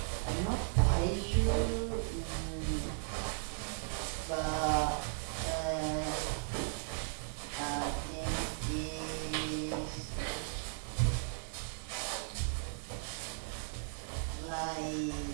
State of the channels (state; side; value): silent; left; digital silence